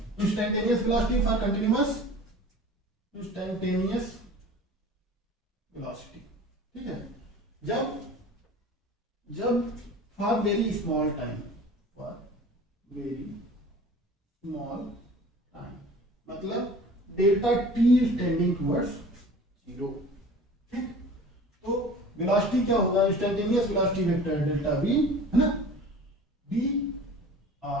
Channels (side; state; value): both; normal; correlation 0.42